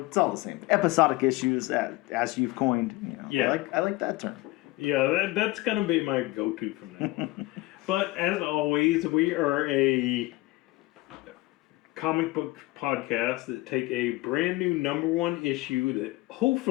it's all the same. Episodic issues, as you've coined. You know, Yeah. I like that term. Yeah, that's going to be my go-to from now on. But as always, we are a comic book podcast that take a brand new #1 issue that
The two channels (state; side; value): quieter; right; 19.9 dB